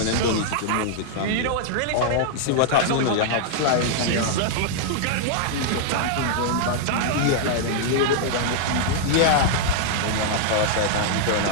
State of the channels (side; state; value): both; different; correlation -0.01